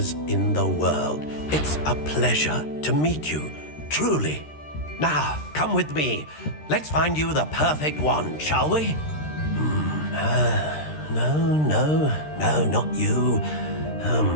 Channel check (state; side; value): late; right; 13 ms